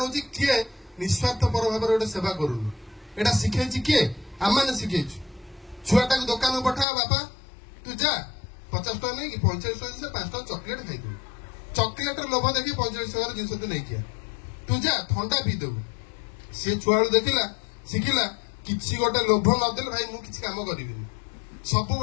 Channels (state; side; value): drops out; right; at 6.9 s